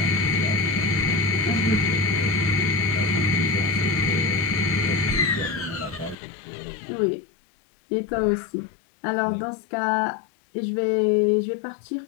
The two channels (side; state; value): right; drops out; at 6.2 s